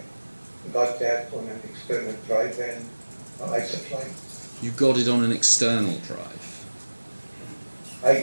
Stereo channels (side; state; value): both; inverted; correlation -1.00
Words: got that on an external drive, and I supplied. You got it on an external drive?